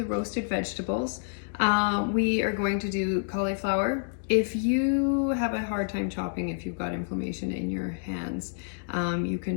roasted vegetables. We are going to do cauliflower. If you have a hard time chopping, if you've got inflammation in your hands, you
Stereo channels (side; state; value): right; silent; digital silence